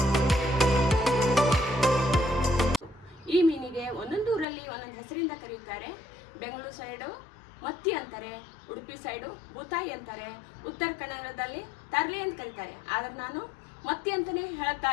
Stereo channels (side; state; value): right; drops out; at 4.5 s